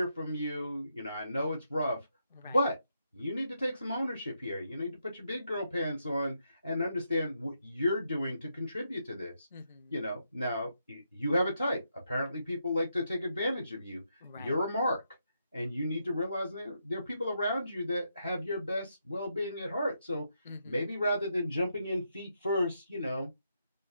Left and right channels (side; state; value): both; inverted; correlation -0.80